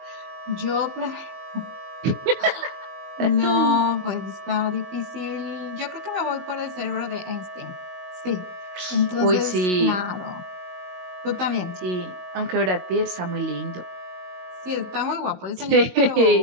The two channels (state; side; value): late; left; 22 ms